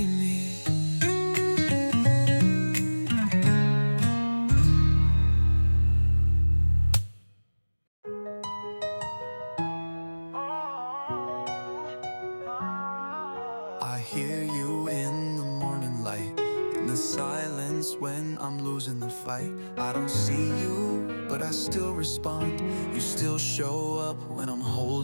me. I hear you in the morning light, in the silence when I'm losing the fight. I don't see you, but I still respond. You still show up when I'm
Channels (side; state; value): both; inverted; correlation -1.00